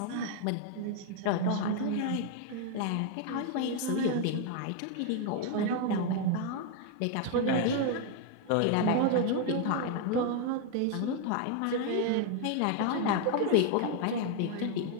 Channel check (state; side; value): different; both; correlation 0.00